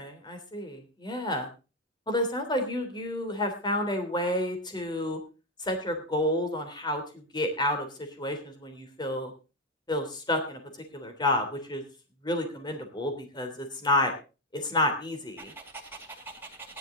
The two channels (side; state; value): both; normal; correlation 0.06